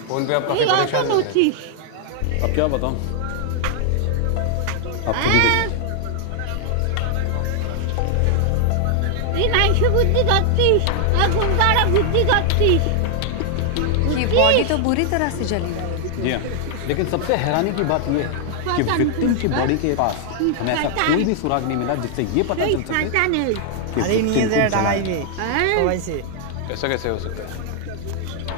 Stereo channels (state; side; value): different; both; correlation 0.00